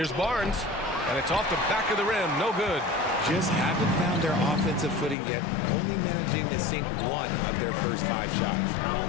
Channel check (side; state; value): right; drops out; at 5.2 s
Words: Barnes, and it's off the back of the rim. No good. Just haven't found their offensive footing yet, only managing to sink 1 of their first 5 shots.